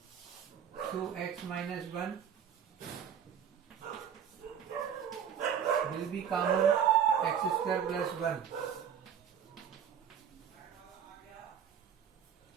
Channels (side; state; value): left; quieter; 8.3 dB